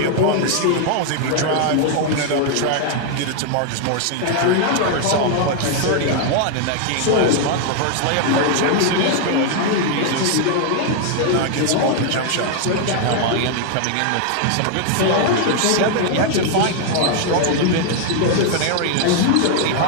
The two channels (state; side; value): different; both; correlation 0.00